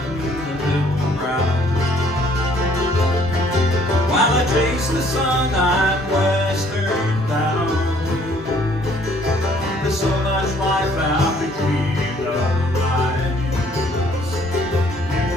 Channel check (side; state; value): both; normal; correlation 0.61